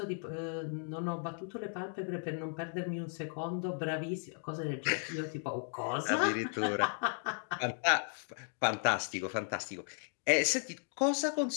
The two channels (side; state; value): right; silent; 54 dB below the other